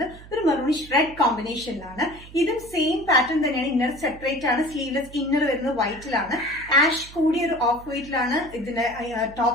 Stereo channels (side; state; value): right; noise; hum, 18 dB below the sound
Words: ഒരു മെറൂണിഷ് റെഡ് കോമ്പിനേഷനിലാണ്. ഇതും സെയിം പാറ്റേൺ തന്നെയാണ്. ഇന്നർ സെപ്പറേറ്റ് ആണ്. സ്ലീവ്ലെസ് ഇന്നർ വരുന്നത് വൈറ്റിലാണ്. ആഷ് കൂടിയ ഒരു ഓഫ് വൈറ്റിലാണ് ഇതിന്റെ